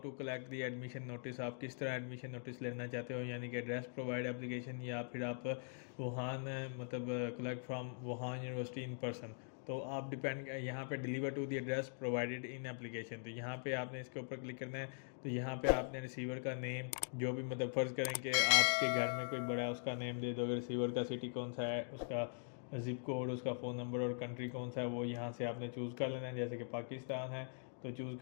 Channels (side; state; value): right; silent; digital silence